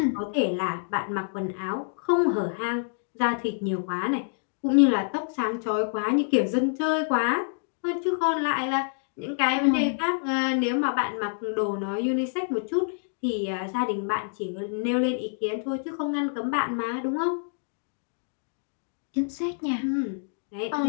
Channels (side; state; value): right; silent; digital silence